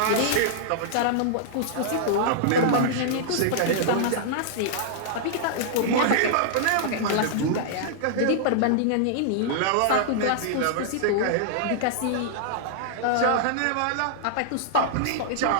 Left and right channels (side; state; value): both; different; correlation -0.01